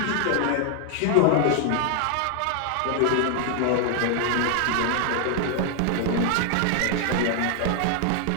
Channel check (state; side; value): different; both; correlation 0.00